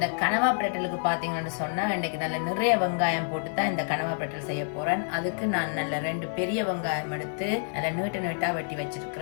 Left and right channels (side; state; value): right; silent; 59 dB below the other